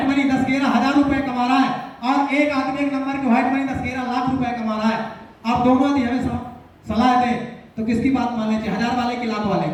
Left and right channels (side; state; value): both; identical; correlation 1.00